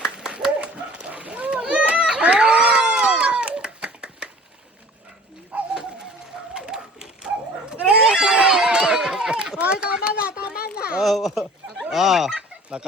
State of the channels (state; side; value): normal; both; correlation 0.47